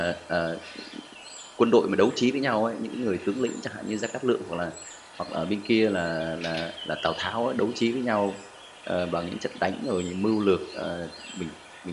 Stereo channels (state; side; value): identical; both; correlation 1.00